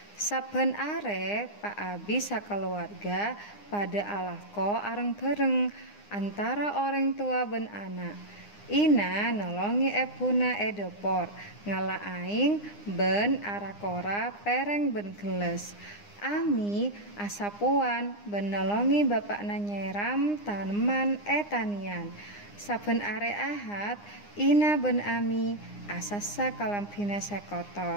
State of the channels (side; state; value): right; late; 9.8 ms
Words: Saben are Pak Abi sakeluarga pada alako areng bareng antara orang tua ben anak. Ina nolongi ebuna edopor ngala aing ben arakora pereng ben geles. Ami asapuan ben nolongi bapakna nyeram taneman etanian. Saben are Ahad Ina ben Ami asasa kalampina